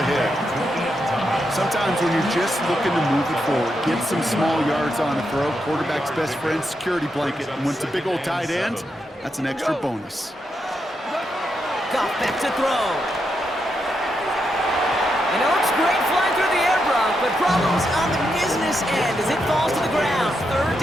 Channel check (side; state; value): both; normal; correlation 0.83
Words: Sometimes when you're just looking to move it forward, get some small yards on a throw, quarterback's best friend, security blanket. And when it's a big old tight end, that's an extra bonus. Goff back to throw. And it looks great flying through the air, Brock, but problems on the business end as it falls to the ground. Third